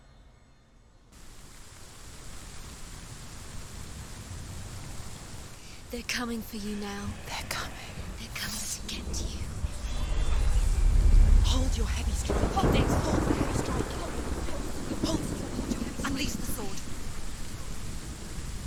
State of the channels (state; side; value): identical; both; correlation 1.00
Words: They're coming for you now. They're coming. They're coming to get you. Hold your heavy strike. Hold it. Hold the heavy strike. Hold your heavy. Unleash the sword.